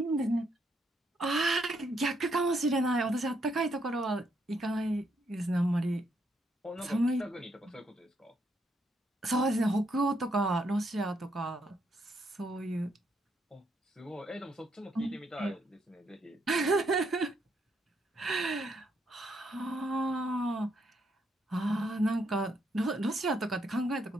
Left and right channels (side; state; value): both; normal; correlation 0.75